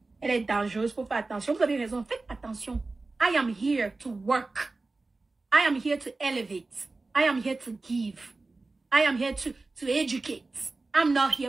Elle est dangereuse, il faut faire attention. Vous avez raison, faites attention. I am here to work. I am here to elevate. I am here to give. I am here to educate. I'm not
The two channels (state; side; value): quieter; left; 3.4 dB